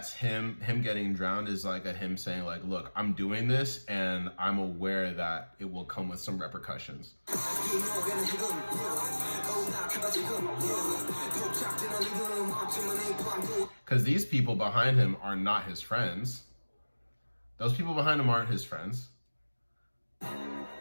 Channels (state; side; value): inverted; both; correlation -1.00